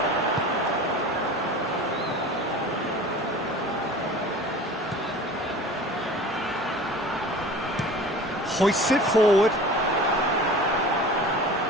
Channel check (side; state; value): both; normal; correlation 0.40